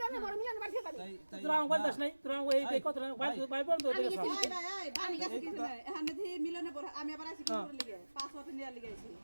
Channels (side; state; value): both; inverted; correlation -1.00